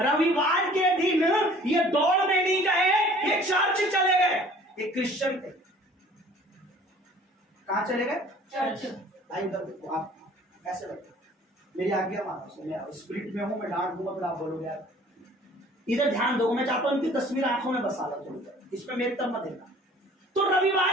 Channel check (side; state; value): both; normal; correlation 0.51